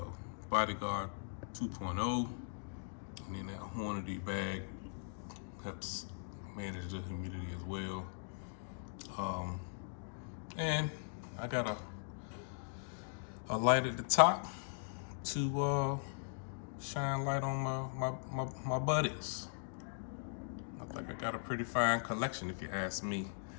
Bodyguard 2.0, and then that Hornady bag helps manage the humidity as well. And I got a light at the top to shine light on my buddies. I think I got a pretty fine collection if you ask me.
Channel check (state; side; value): silent; right; digital silence